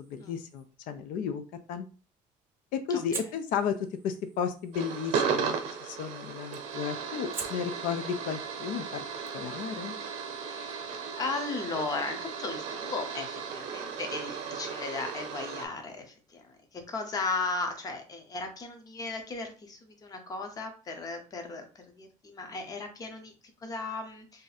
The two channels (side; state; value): both; normal; correlation 0.16